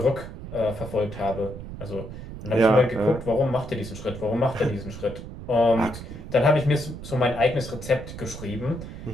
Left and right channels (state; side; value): noise; right; rumble, 11 dB below the sound